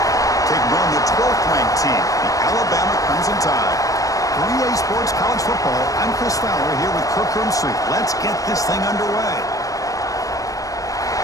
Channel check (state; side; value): late; right; 0.16 ms